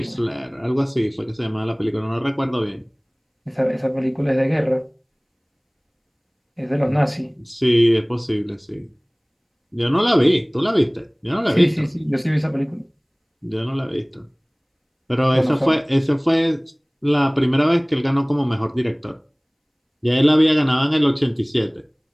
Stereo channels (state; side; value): identical; both; correlation 1.00